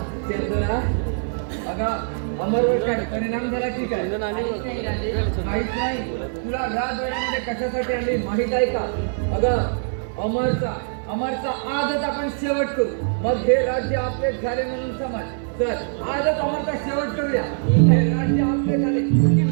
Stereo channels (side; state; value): left; silent; 63 dB below the other